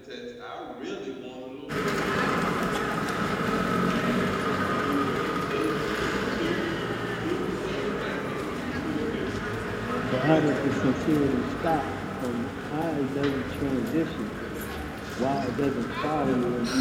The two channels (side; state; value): both; identical; correlation 1.00